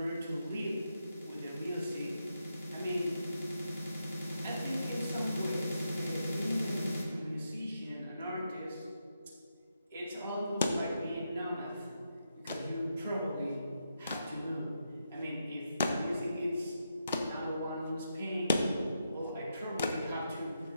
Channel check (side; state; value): both; inverted; correlation -0.84